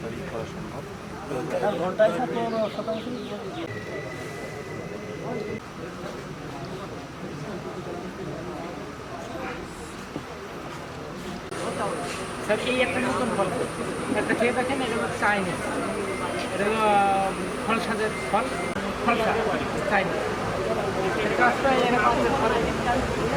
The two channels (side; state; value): both; identical; correlation 1.00